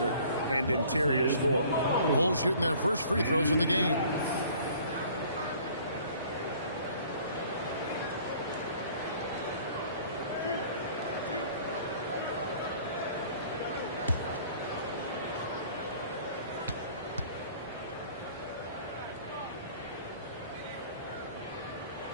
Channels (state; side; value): inverted; both; correlation -0.52